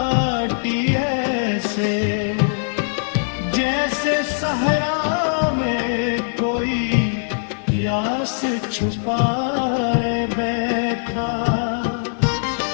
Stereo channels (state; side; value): silent; right; digital silence